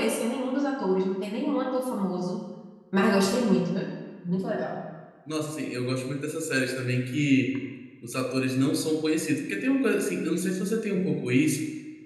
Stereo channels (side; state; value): both; identical; correlation 1.00